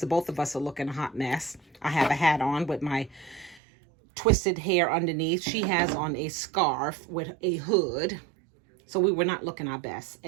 both of us are looking a hot mess. I have a hat on with my twisted hair underneath. She has on a scarf with a hood. So we were not looking our best.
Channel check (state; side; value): drops out; left; at 3.6 s